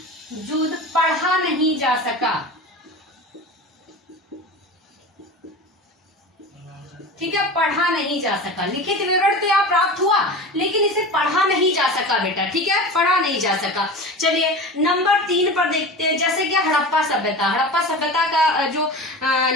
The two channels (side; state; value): both; normal; correlation 0.31